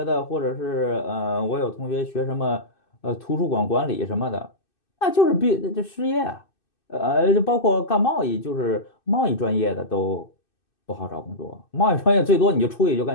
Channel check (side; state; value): right; late; 2.6 ms